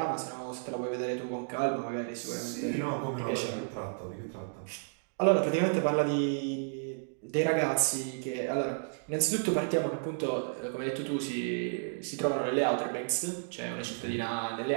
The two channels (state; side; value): silent; left; digital silence